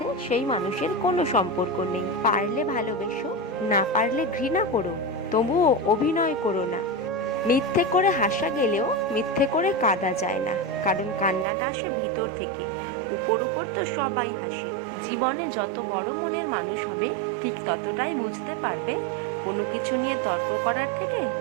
সেই মানুষের কোনো সম্পর্ক নেই। পারলে ভালোবেসো, না পারলে ঘৃণা করো, তবুও অভিনয় করো না। মিথ্যে করে হাসা গেলেও মিথ্যে করে কাঁদা যায় না, কারণ কান্নাটা আসে ভিতর থেকে। উপর উপর তো সবাই হাসে। জীবনে যত বড় মনের মানুষ হবে ঠিক ততটাই বুঝতে পারবে কোনো কিছু নিয়ে তর্ক করার থেকে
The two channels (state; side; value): drops out; left; at 11.5 s